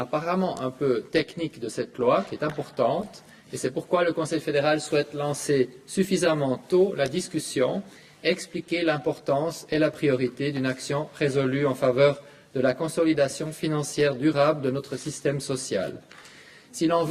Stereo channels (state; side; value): identical; both; correlation 1.00